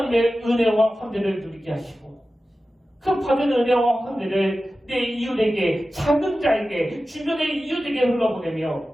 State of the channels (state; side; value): normal; both; correlation 0.94